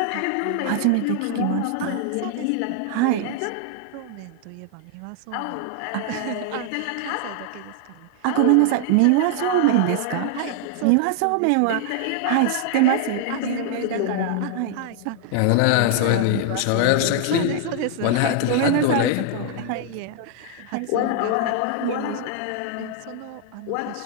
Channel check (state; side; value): different; both; correlation 0.00